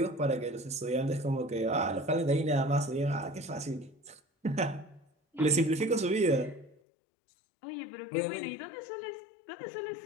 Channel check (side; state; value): right; drops out; at 6.8 s